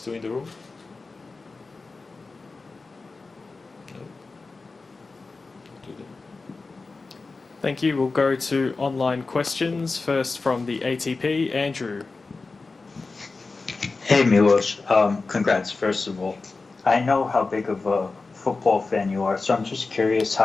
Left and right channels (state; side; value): quieter; right; 3.9 dB